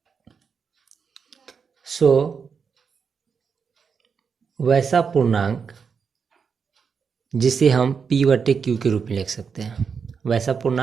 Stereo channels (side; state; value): left; quieter; 6.0 dB